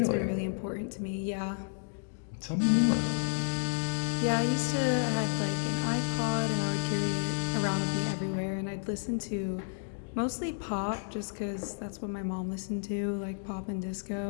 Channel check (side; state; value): right; silent; digital silence